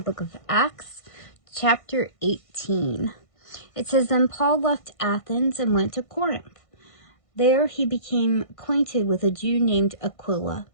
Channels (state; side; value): late; right; 1.5 ms